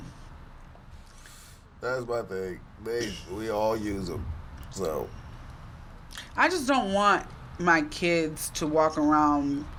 That's my thing. We all use them. So. I just don't want my kids to walk around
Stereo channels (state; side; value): identical; both; correlation 1.00